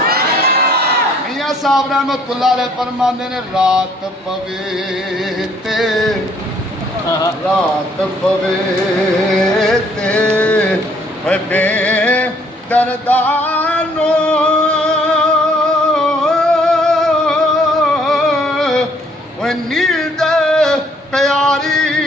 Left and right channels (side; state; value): both; normal; correlation 0.63